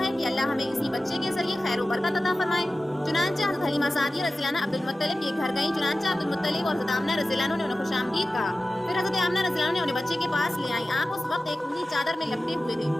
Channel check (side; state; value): both; normal; correlation 0.95